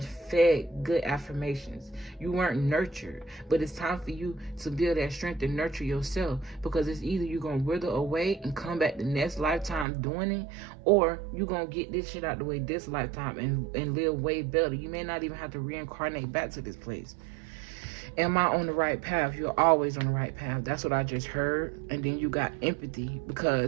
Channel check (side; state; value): left; drops out; at 9.9 s